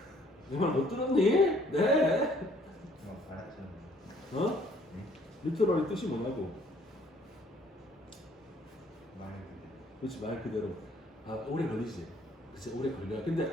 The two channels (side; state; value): both; normal; correlation 0.61